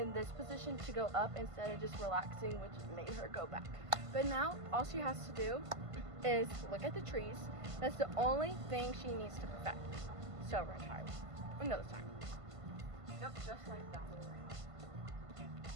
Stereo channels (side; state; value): left; late; 1.5 ms